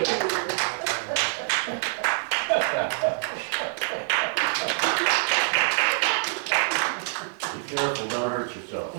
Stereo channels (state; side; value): silent; left; 59 dB below the other